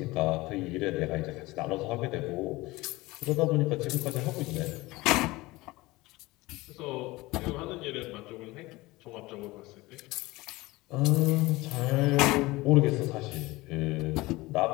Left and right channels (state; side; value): quieter; right; 20.7 dB